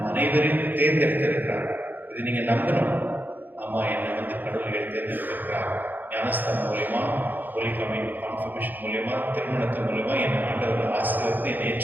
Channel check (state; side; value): late; left; 0.087 ms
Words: அனைவரையும் தேர்ந்தெடுத்திருக்கிறார். இது நீங்க நம்பணும். ஆமா, என்னை வந்து கடவுள் தேர்ந்தெடுத்திருக்கிறார். ஞானஸ்தானம் மூலியமா, ஹோலி கான்ஃபர்மேஷன் மூலியமா, திருமணத்தின் மூலியமா என்னை ஆண்டவர் ஆசீர்வதித்து என்னை